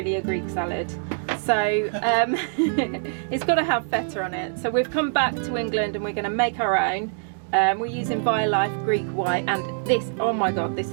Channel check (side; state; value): left; silent; digital silence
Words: a Greek salad. So it's got to have feta on it. So we've come back to England and we're going to make our own. We're using Violife Greek White, and this, oh my god, this